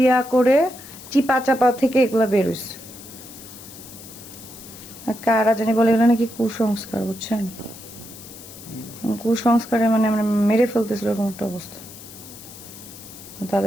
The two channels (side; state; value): left; noise; hiss, 16 dB below the sound